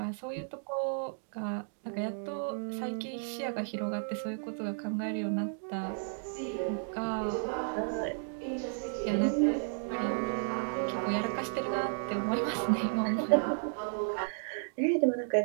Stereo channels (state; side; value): silent; left; digital silence